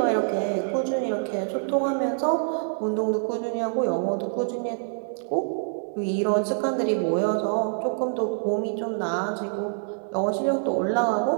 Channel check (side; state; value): left; silent; digital silence